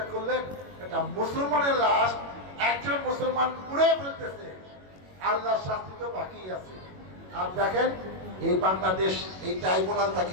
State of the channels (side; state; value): left; late; 21 ms